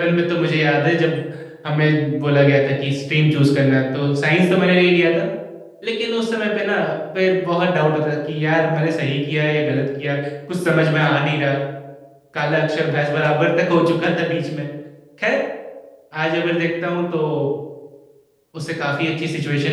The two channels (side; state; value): both; identical; correlation 1.00